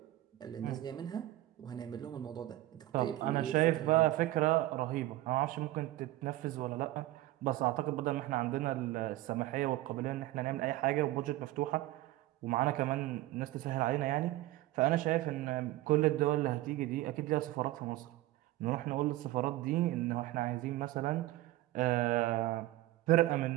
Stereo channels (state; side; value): quieter; left; 16.6 dB